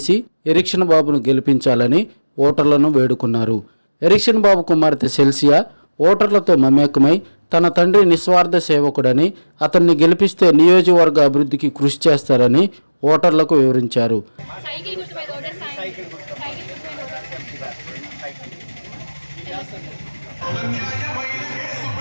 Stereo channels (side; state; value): both; inverted; correlation -1.00